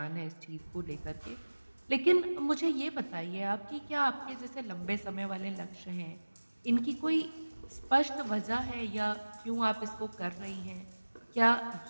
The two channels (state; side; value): inverted; both; correlation -1.00